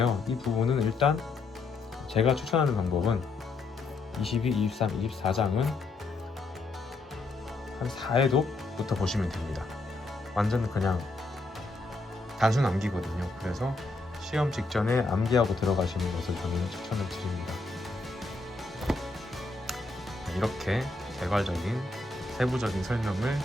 이 부분은 일단 제가 추천하는 방법은 22, 23, 24장은 한 4회독부터 보시면 됩니다. 완전 그냥 단순 암기거든요. 그래서 시험 직전에 암기하고 들어가시는 것을 저는 추천을 드립니다. 이렇게 개괄적인 세부적인 설명을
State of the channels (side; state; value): right; quieter; 3.4 dB